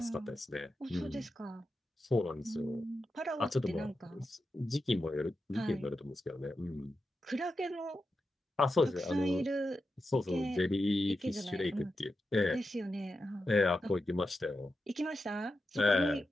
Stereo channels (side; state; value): both; normal; correlation 0.89